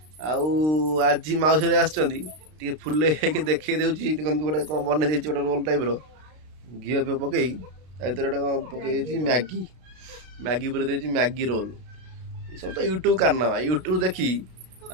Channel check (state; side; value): late; left; 32 ms